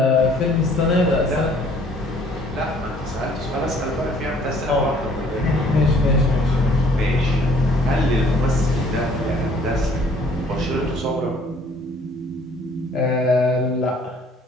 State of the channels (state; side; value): normal; both; correlation 0.58